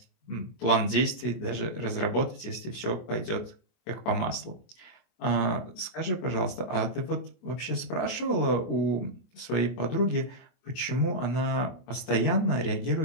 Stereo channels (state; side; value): late; right; 24 ms